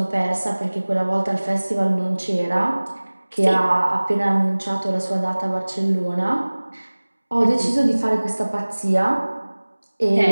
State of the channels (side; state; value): both; inverted; correlation -1.00